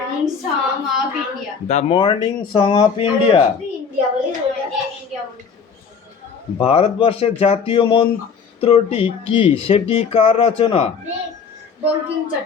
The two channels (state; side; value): quieter; right; 6.0 dB